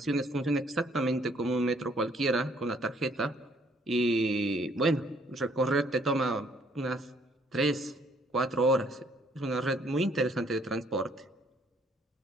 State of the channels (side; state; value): both; normal; correlation 0.64